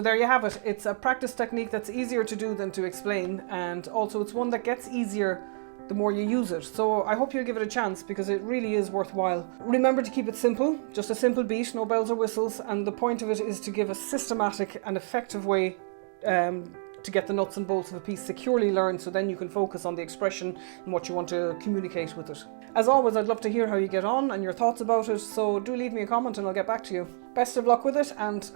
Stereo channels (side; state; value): left; silent; 59 dB below the other